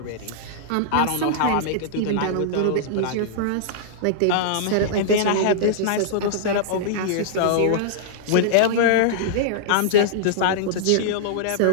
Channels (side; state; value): both; different; correlation -0.02